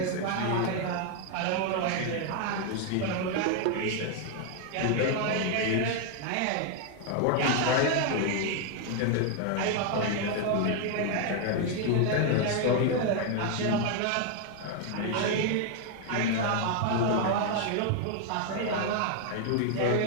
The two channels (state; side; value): different; both; correlation 0.00